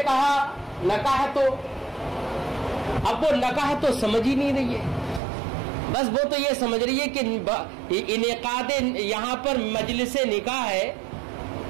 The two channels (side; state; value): left; drops out; at 5.2 s